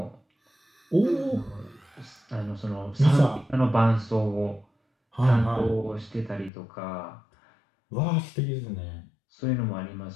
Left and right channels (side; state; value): right; drops out; at 6.5 s